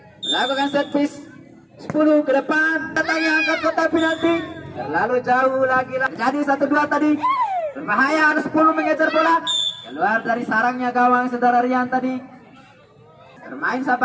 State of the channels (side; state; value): both; identical; correlation 1.00